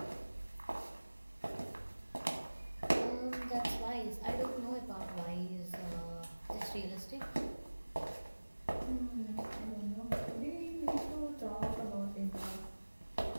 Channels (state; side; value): inverted; both; correlation -1.00